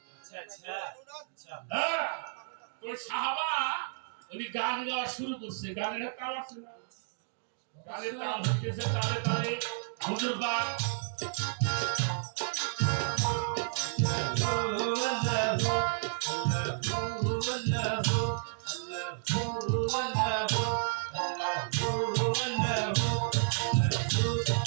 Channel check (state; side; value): silent; left; digital silence